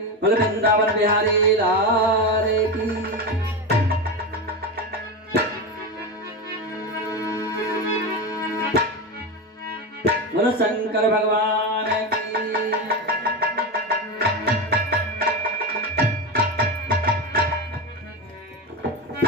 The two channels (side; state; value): both; normal; correlation 0.18